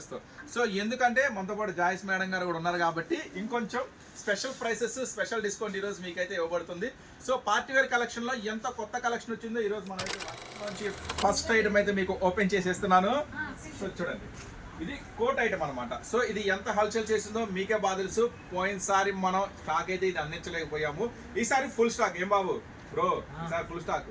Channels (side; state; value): both; identical; correlation 1.00